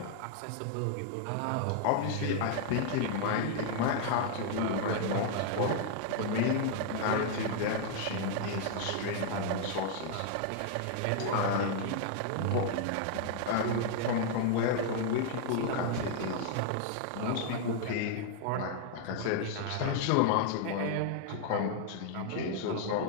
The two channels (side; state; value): both; different; correlation 0.00